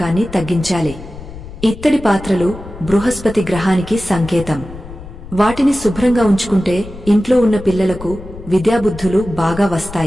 తగ్గించాలి. ఇత్తడి పాత్రలు బృహస్పతి గ్రహానికి సంకేతం. వాటిని శుభ్రంగా ఉంచుకుంటే ఇంట్లో ఉన్న పిల్లలకు విద్యాబుద్ధులు బాగా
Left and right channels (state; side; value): noise; left; rumble, 14 dB below the sound